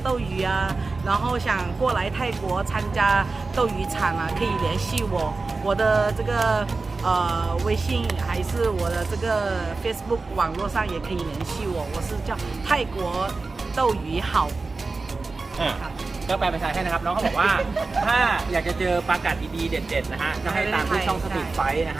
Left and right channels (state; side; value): quieter; left; 3.8 dB